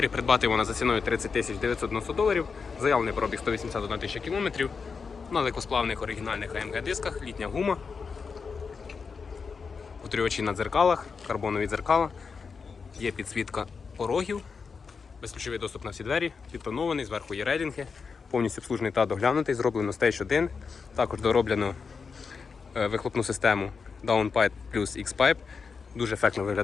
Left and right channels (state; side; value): quieter; right; 5.3 dB